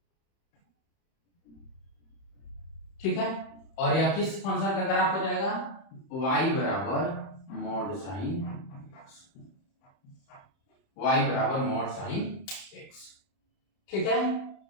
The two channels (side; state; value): right; late; 31 ms